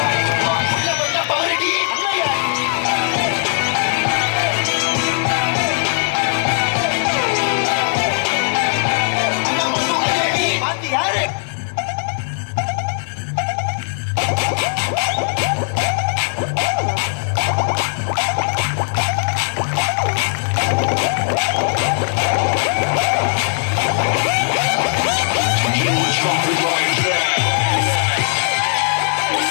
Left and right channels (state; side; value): silent; right; 59 dB below the other